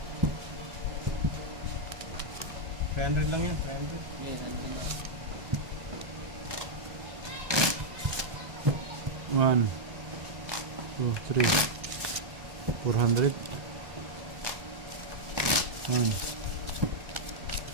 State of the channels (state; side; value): late; left; 1.2 ms